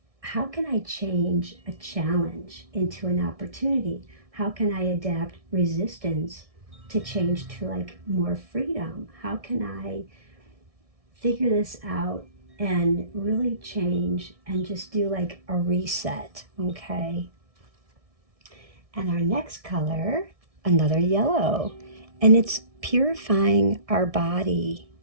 how can I change a challenge into an opportunity? How can I adapt resistance to change to like more freedom? How can I figure this out and really change and just do like a reset? Okay. And our next color, another yellow, and it's purifying our body,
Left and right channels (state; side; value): late; left; 1.6 ms